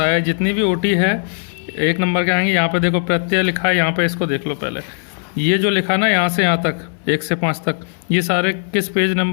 है जितनी भी ओटी है 1 नंबर के आएंगे। यहाँ पे देखो प्रत्यय लिखा है, यहाँ पे इसको देख लो पहले। ये जो लिखा ना यहाँ से यहाँ तक 1 से 5 तक, ये सारे किस पेज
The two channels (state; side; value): silent; right; 64 dB below the other